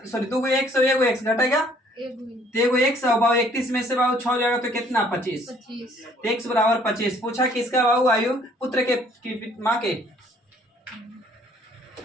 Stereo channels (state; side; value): normal; both; correlation 0.60